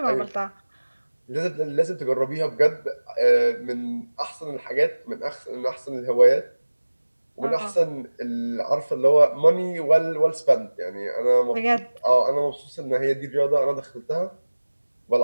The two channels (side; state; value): both; inverted; correlation -1.00